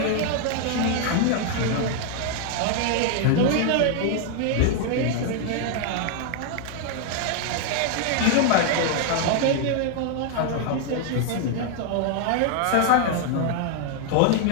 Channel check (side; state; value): both; different; correlation 0.00